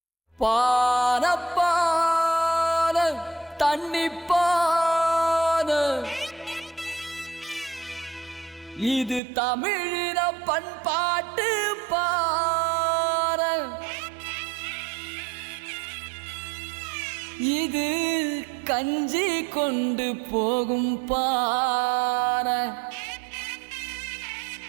இது தமிழின பண்பாட்டு பார, இது கஞ்சி கொண்டு போகும் பார,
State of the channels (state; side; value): drops out; left; at 9.2 s